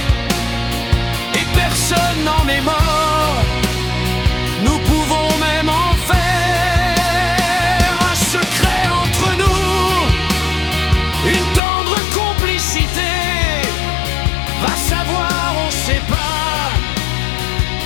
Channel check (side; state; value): right; drops out; at 11.6 s